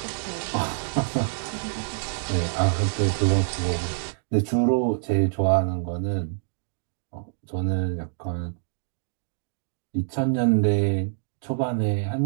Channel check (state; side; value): silent; left; digital silence